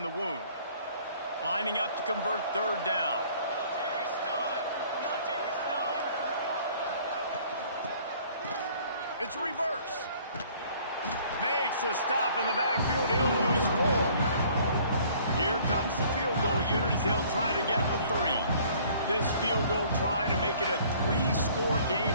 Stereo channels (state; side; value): inverted; both; correlation -0.56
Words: the wound. Lining up to convert third down. It's reverse. Makes a stop in the backfield. He'll lose 4. Here comes the field goal unit as they'll try to get the 3. This field goal try to make it a 3-score